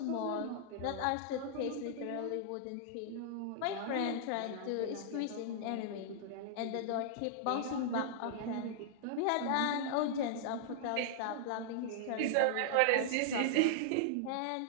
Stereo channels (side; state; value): both; different; correlation -0.01